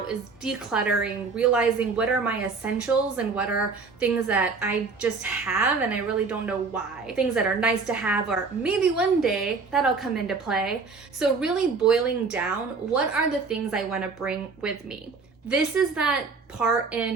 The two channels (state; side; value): quieter; left; 4.5 dB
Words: is decluttering, realizing what are my essentials and what are things that I just have and I really don't know why. Things that are nice to have, or maybe one day that'll come into play. So really boiling down, what are the things I want to bring with me? This is that part